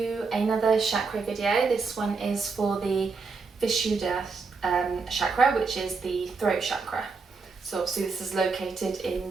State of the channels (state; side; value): quieter; left; 4.6 dB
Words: another chakra video. This one is for the Vishuddha Chakra, which is the throat chakra. So obviously this is located in